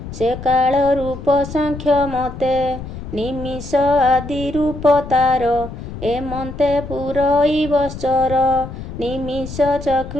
से काल रूप सांख्य मते निमिष आदि रूप तार एमन्ते पुरैवश्चर निमिष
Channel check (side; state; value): left; noise; rumble, 10 dB below the sound